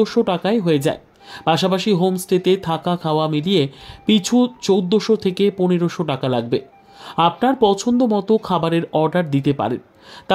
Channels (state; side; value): identical; both; correlation 1.00